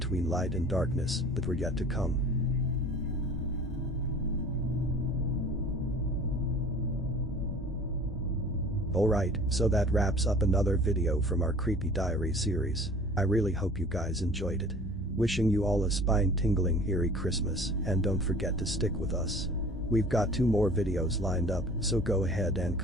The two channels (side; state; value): both; normal; correlation 0.45